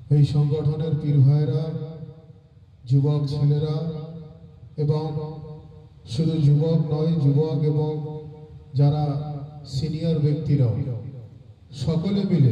এই সংগঠনের পীর ভাইরা, যুবক ছেলেরা এবং শুধু যুবক নয়, যুবক এবং যারা সিনিয়র ব্যক্তিরাও সকলে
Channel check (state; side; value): identical; both; correlation 1.00